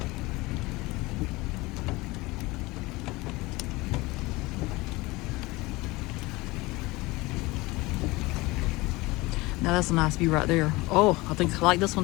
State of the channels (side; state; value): right; quieter; 21.9 dB